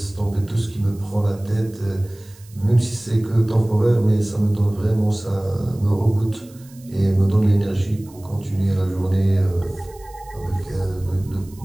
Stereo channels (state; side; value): noise; right; hiss, 25 dB below the sound